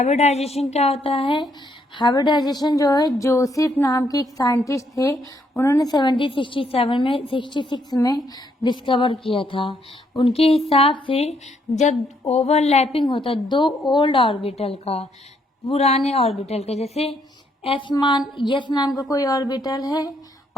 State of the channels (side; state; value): both; normal; correlation 0.72